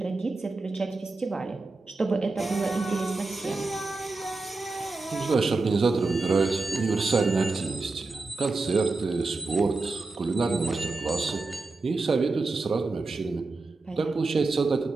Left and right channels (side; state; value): left; quieter; 3.6 dB